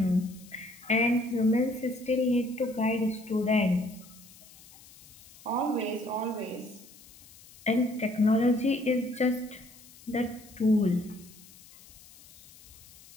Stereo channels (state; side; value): noise; left; hiss, 22 dB below the sound